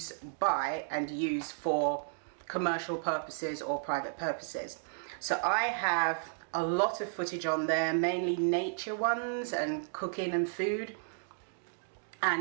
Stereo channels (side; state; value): left; silent; digital silence